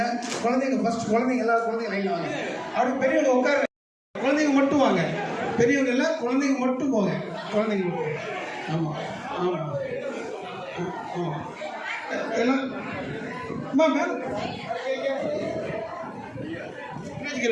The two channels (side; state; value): both; identical; correlation 1.00